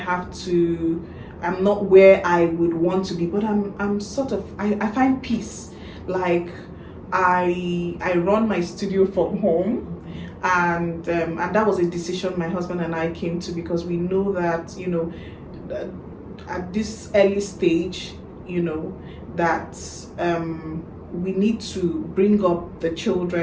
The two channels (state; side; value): identical; both; correlation 1.00